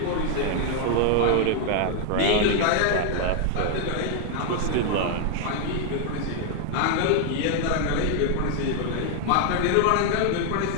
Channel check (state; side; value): different; both; correlation 0.00